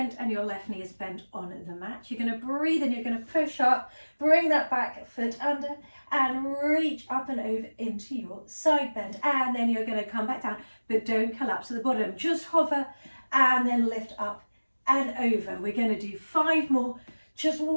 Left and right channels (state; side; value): inverted; both; correlation -1.00